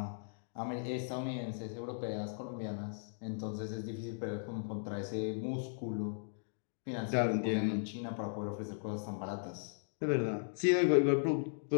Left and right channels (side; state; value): right; silent; digital silence